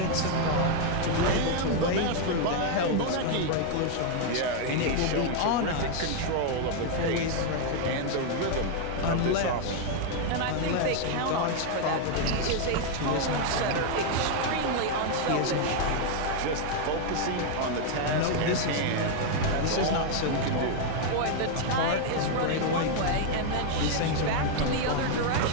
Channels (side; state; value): both; different; correlation 0.00